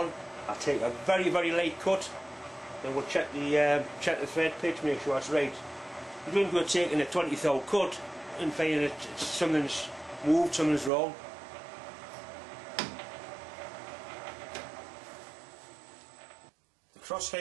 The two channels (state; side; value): drops out; left; at 10.9 s